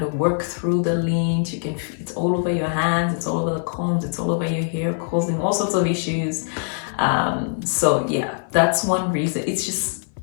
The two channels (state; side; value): silent; right; 58 dB below the other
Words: of work through the lint. It's all over your hands, it's all over the combs, it's all over your hair, causing all sorts of issues. So yeah, that's one reason.